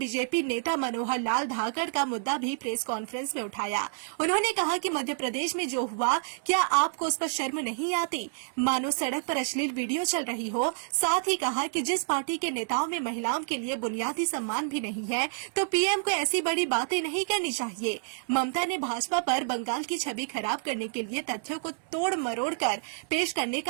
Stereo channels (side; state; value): left; silent; digital silence